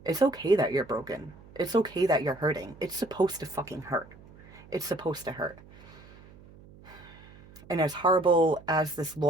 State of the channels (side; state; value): right; noise; hum, 22 dB below the sound